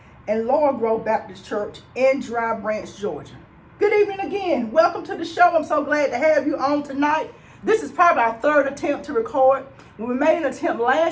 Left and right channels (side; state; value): both; identical; correlation 1.00